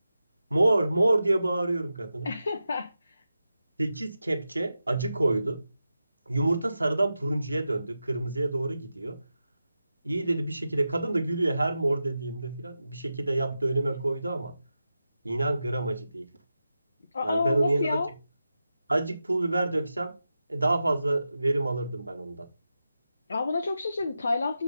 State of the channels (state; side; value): inverted; both; correlation -0.90